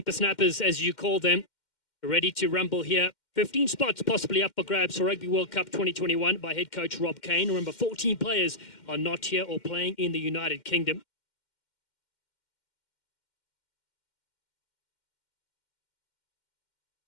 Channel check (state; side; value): late; right; 2.1 ms